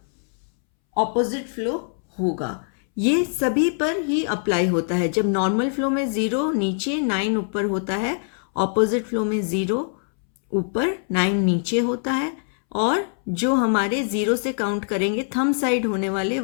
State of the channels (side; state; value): right; silent; 63 dB below the other